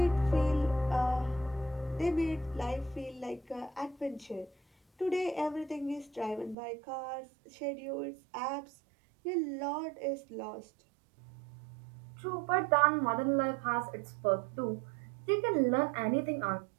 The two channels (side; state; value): left; drops out; at 6.6 s